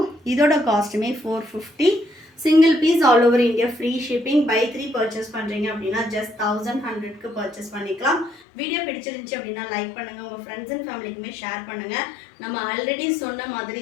இதோட காஸ்ட்டுமே 450. Single piece all over India free shipping. Buy 3 purchase பண்ணுறீங்க அப்படின்னா ஜஸ்ட் 1100க்கு பர்ச்சேஸ் பண்ணிக்கலாம். வீடியோ பிடிச்சிருந்துச்சு அப்படின்னா லைக் பண்ணுங்கள், உங்கள் ஃப்ரெண்ட்ஸ் அண்ட் ஃபேமிலிக்குமே ஷேர் பண்ணுங்கள். நம்ம ஆல்ரெடி சொன்ன மாதிரி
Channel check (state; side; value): drops out; right; at 8.4 s